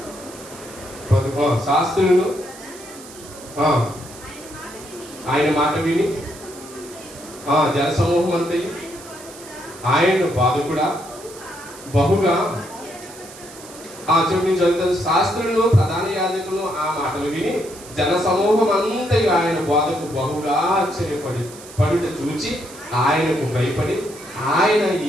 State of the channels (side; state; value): right; noise; hiss, 17 dB below the sound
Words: శాస్త్రులను ఆయన మాట విని జనసమూహం అంతయు ఆయన బాధకుడా బహుగా చదువుతాను. శాస్త్రులను ప్రధాన యాజకులను ఆ మాటలు విని జనసమూహం అంతయు ఆయన బాధకు బహుగా ఆశ్చర్యపడుట చూచి ఆయనకు భయపడి ఆయన